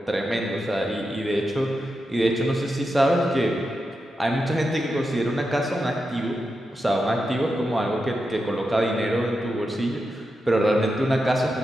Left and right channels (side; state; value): both; normal; correlation 0.88